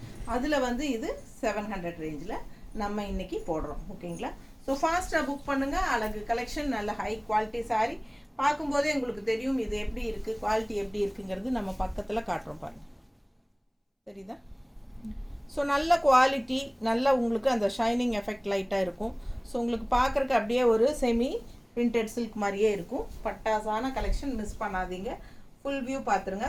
அதில் வந்து இது 700 ரேஞ்சில் நம்ம இன்றைக்கி போடுறோம். ஓகேங்களா, ஸோ ஃபாஸ்ட்டாக புக் பண்ணுங்கள். அழகு கலெக்ஷன், நல்ல ஹை குவாலிட்டி சாரீ. பார்க்கும்போதே உங்களுக்கு தெரியும் இது எப்படி இருக்குது, குவாலிட்டி எப்படி இருக்குங்கிறது நம்ம பக்கத்தில் காட்டுறோம் பாருங்கள், தெரியுதா? ஸோ நல்ல குவாலிட்டி, நல்ல உங்களுக்கு அந்த ஷைனிங் எஃபெக்ட் லைட்டாக இருக்கும். ஸோ உங்களுக்கு பார்க்குறக்கு அப்படியே ஒரு செமி பிரிண்டட் சில்க் மாதிரியே இருக்கும். பட்டாசான கலெக்ஷன் மிஸ் பண்ணாதீங்க. ஃபுல் வியூ பார்த்துருங்க,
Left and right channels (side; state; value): both; identical; correlation 1.00